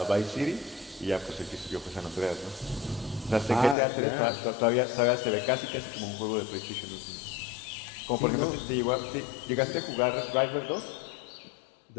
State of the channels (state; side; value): drops out; right; at 3.8 s